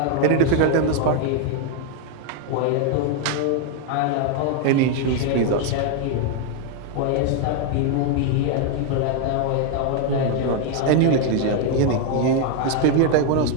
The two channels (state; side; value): different; both; correlation 0.00